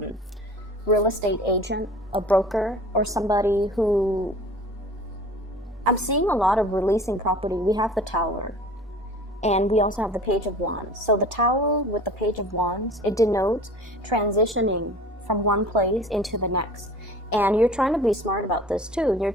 real estate agent, a broker, or somebody who... I'm seeing a lot of releasing property. We have the Tower, and we also have the Page of Wands. So the Tower with the Page of Wands, it denotes transitioning from one place into the next. And you're trying to be smart about this too. You're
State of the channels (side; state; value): both; normal; correlation 0.43